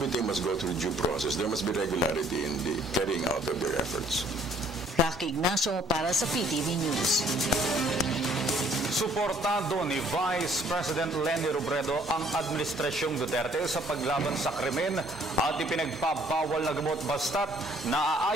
must go through due process. There must be regularity in the carrying out of their efforts. Rocky Ignacio para sa PTV News. Suportado ni Vice President Leni Robredo ang Administrasyong Duterte sa paglaban sa krimen at ipinagpapawal na gamot basta't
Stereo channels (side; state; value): both; normal; correlation 0.61